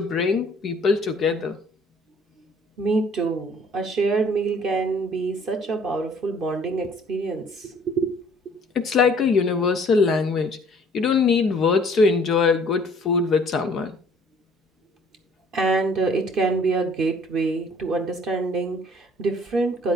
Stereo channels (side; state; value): both; normal; correlation 0.57